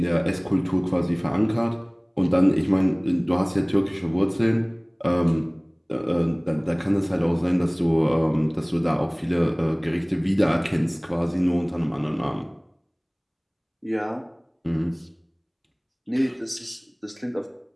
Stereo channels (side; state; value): both; identical; correlation 1.00